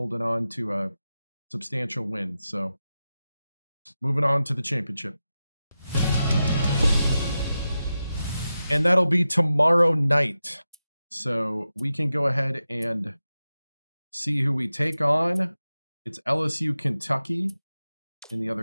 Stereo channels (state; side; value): inverted; both; correlation -0.92